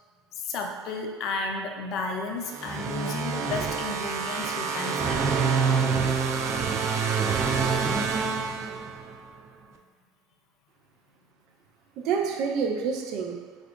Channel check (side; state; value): left; quieter; 3.9 dB